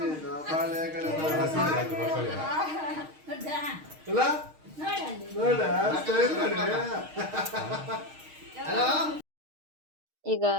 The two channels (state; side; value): late; left; 6.4 ms